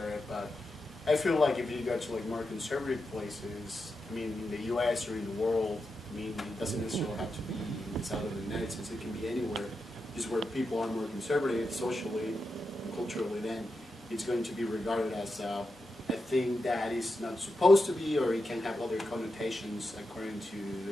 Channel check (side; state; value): both; normal; correlation 0.88